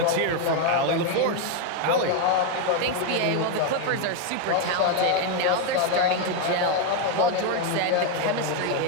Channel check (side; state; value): both; different; correlation 0.01